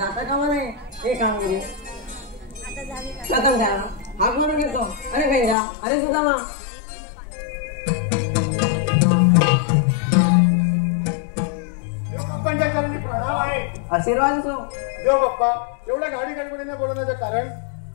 कामा नाही. ही कामगिरी प्रथम त्याला हाक मारून घेतो. अरे पैजा, अरे सुदामा. आशीर्वाद असो. देव बाप्पा, एवढ्या गाडी गडबडीने बोलवण्याचं कारण?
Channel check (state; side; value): drops out; right; at 5.6 s